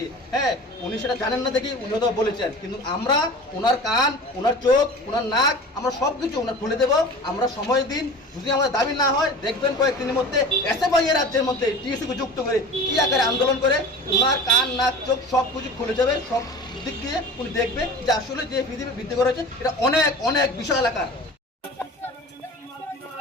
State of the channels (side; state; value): both; normal; correlation 0.37